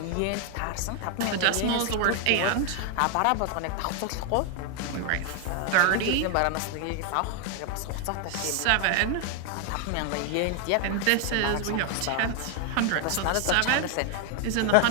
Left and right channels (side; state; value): both; different; correlation 0.00